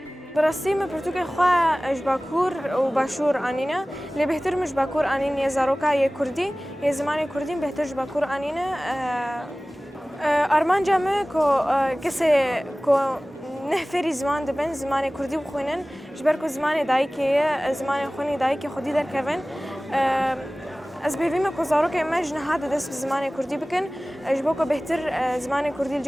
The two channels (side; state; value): both; normal; correlation 0.98